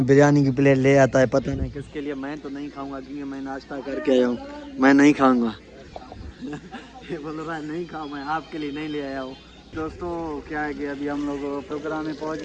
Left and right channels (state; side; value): identical; both; correlation 1.00